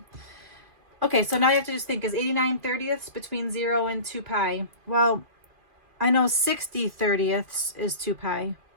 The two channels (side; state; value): left; late; 2.6 ms